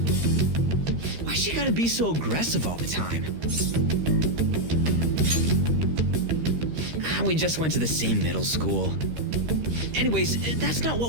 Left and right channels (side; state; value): left; late; 13 ms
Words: Why she gotta be so aggressive all the time? We just went to the same middle school. Anyways, that's not